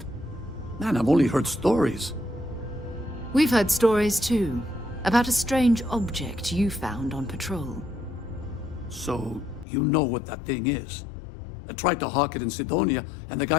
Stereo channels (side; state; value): right; drops out; at 9.7 s